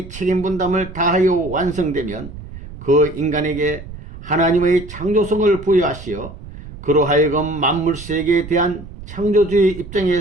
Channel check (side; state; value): right; noise; rumble, 14 dB below the sound